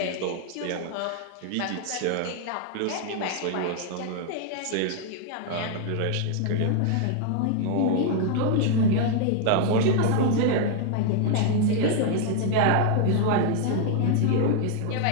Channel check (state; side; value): different; both; correlation 0.00